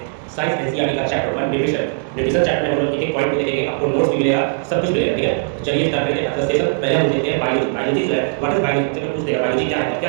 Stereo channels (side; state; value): left; silent; digital silence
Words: साइंस एनसीईआरटी का चैप्टर 1 न्यूट्रिशन। न्यूट्रिशन चैप्टर में हम लोग एक एक पॉइंट को देखेंगे, आपको नोट्स भी मिलेगा, सब कुछ मिलेगा, ठीक है। तो चलिए स्टार्ट करते हैं। अच्छा सेशन पहले हम देखते हैं बायोलॉजी। बायोलॉजी जो है व्हाट इज बायोलॉजी, से पूछ देगा बायोलॉजी क्या है, तो क्या